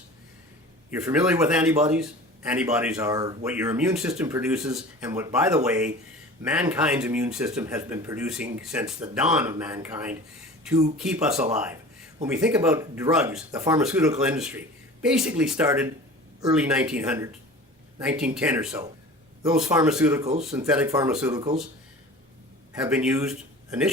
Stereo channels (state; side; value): normal; both; correlation 0.39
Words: You're familiar with antibodies? Antibodies are what your immune system produces, and what, by the way, mankind's immune system has been producing since the dawn of mankind to keep us alive. When we think about drugs, the pharmaceutical industry basically started early 1900s. 1910 or so. Those pharmaceuticals, synthetic pharmaceuticals, have been used